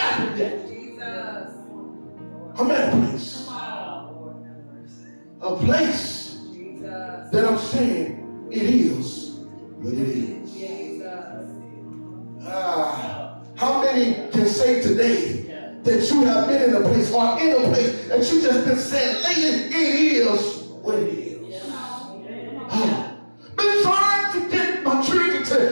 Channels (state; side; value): inverted; both; correlation -1.00